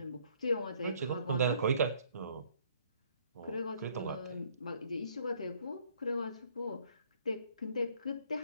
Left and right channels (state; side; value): inverted; both; correlation -0.62